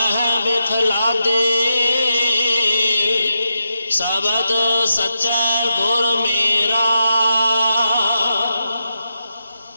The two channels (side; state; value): both; inverted; correlation -0.87